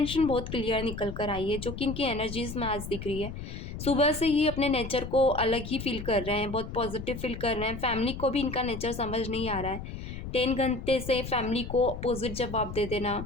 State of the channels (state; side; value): noise; left; rumble, 8 dB below the sound